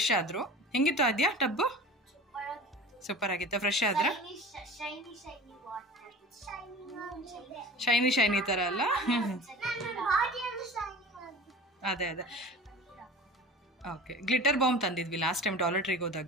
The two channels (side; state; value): both; normal; correlation 0.37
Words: ಆದರು. ಹೆಂಗಿತ್ತು ಆದ್ಯ ಟಬ್ಬು? ಸೂಪರ್ ಆಗಿತ್ತು. ಫ್ರೆಶ್ ಆದ್ರೆ ಶೈನಿ ಥರ ಅಲ್ಲ? ಅದೇ ಓಕೆ. ಗ್ಲಿಟರ್ ಬಾಂಬ್ ತಂದಿದ್ವಿ ಲಾಸ್ಟ್ ಟೈಮ್ ಡಾಲರ್ ಟ್ರೀಗೆ